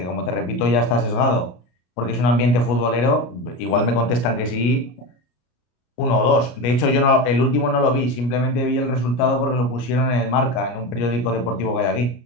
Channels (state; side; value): late; right; 33 ms